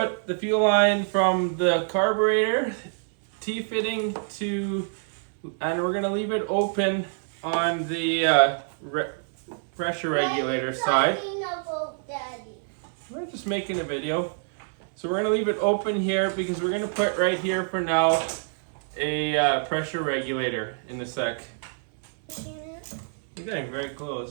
the fuel line from the carburetor T-fitting to, and we're going to leave it open on the pressure regulator side. We're just making a video. So we're going to leave it open here because we're going to put right here for now a pressure regulator in the sec. You're getting very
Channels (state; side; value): silent; left; 61 dB below the other